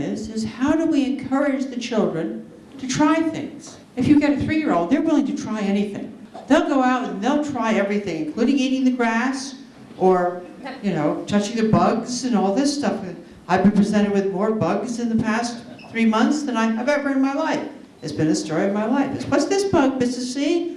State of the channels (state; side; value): identical; both; correlation 1.00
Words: how do we encourage the children to try things? If you get a 3-year-old, they're willing to try anything. They'll go out and they'll try everything, including eating the grass or, touching the bugs and all this stuff. I've been presented with more bugs in the past 3 months than I have ever in my life. It's been a story of my life. What's this bug, Mrs. C?